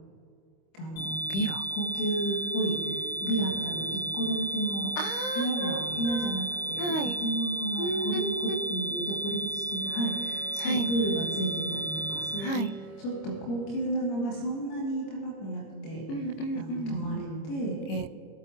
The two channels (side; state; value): right; late; 25 ms